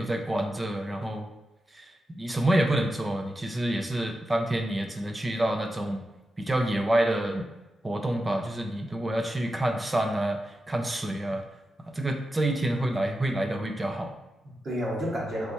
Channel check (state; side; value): normal; both; correlation 0.90